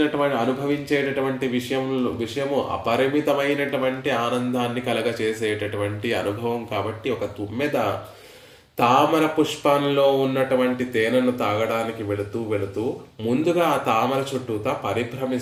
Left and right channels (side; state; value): both; identical; correlation 1.00